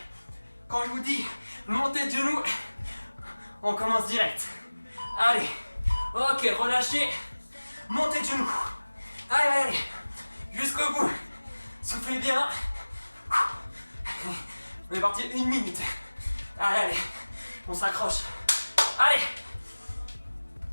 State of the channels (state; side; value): inverted; both; correlation -1.00